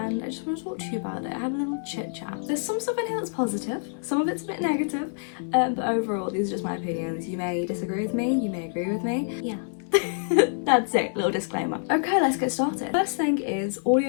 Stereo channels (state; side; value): silent; right; 60 dB below the other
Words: I just want to talk to you about it. I have a little chit chat. There's some stuff in here that's positive, some of it's a bit negative, but overall these are just my opinions. You may disagree with me, you may agree with me. Yeah. That's it, little disclaimer. Okay, let's get started. First thing is,